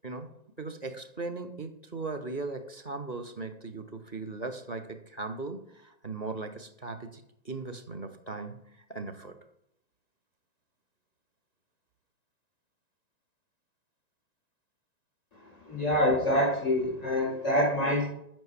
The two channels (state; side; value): late; right; 1.9 ms